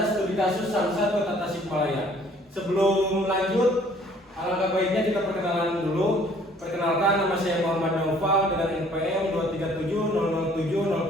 studi kasus Samsat Kota Tasikmalaya. Sebelum lanjut, alangkah baiknya kita perkenalan dulu. Perkenalkan, nama saya Muhammad Naufal dengan NPM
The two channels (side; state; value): both; normal; correlation 0.57